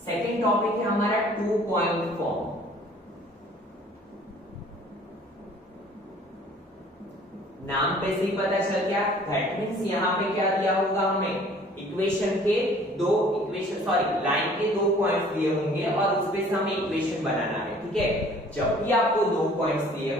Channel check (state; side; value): normal; both; correlation 0.53